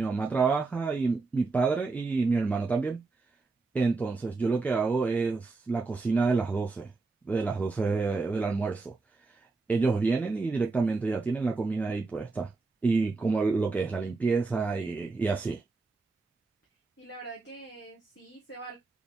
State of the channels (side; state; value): left; quieter; 3.9 dB